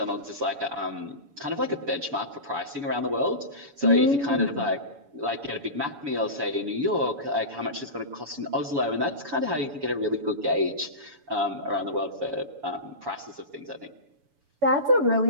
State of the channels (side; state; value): left; late; 7.1 ms